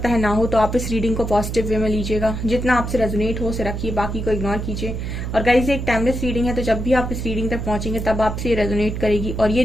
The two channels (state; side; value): noise; right; hum, 4 dB below the sound